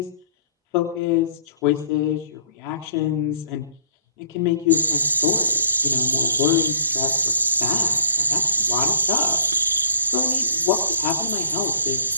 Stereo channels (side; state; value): both; inverted; correlation -0.53